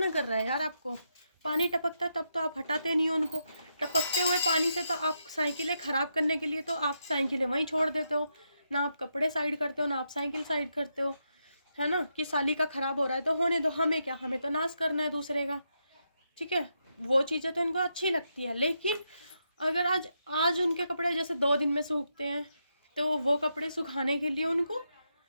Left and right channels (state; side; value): inverted; both; correlation -0.83